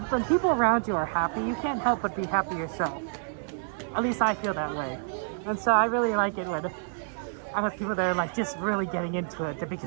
people around you are happy, you can't help but be happy yourself. At least I feel that way. And so I really like it when I'm with people that are like just really getting into it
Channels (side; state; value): left; silent; digital silence